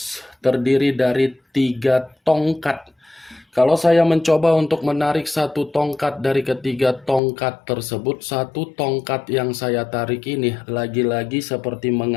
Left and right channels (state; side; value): drops out; right; at 7.2 s